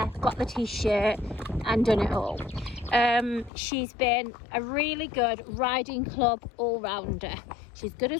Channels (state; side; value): drops out; right; at 3.5 s